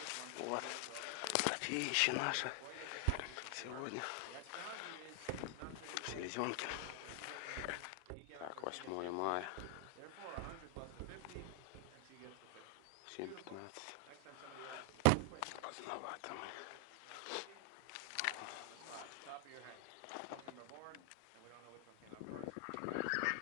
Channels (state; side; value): different; both; correlation 0.00